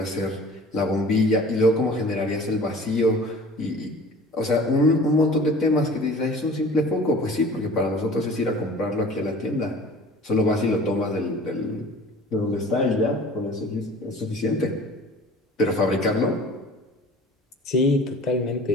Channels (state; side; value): normal; both; correlation 0.44